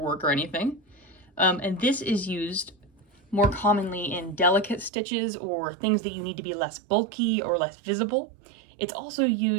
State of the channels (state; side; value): drops out; left; at 4.9 s